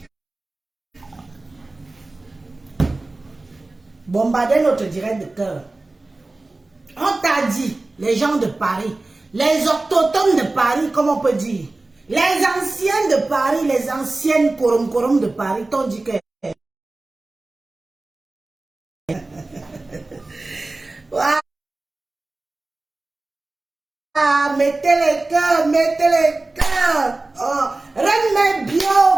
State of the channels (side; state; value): left; quieter; 3.1 dB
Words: Bombarder notre direct de cœur. On t'a dit, les gens de Paris, les autochtones de Paris, comme on peut dire, les anciens de Paris, les anciennes korom de Paris, t'ont dit que... Ah, mettez les cœurs, mettez les cœurs. Oh, Reine